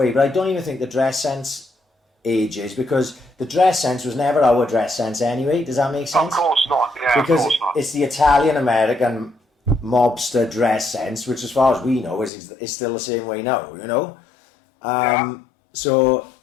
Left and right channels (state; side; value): drops out; right; at 12.3 s